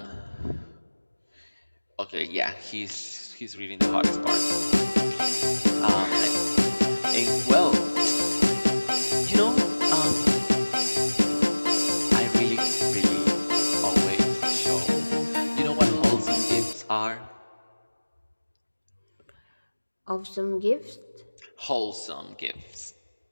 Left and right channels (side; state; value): both; inverted; correlation -1.00